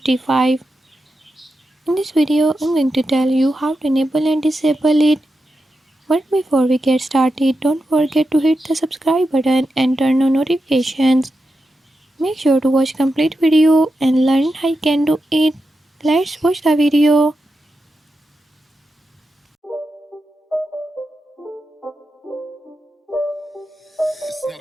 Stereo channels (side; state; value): both; normal; correlation 0.89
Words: In this video I'm going to tell you how to enable and disable it. But before we get started, don't forget to hit the subscribe button and turn on notifications. Make sure to watch complete video and learn how you can do it. Let's watch the video. It's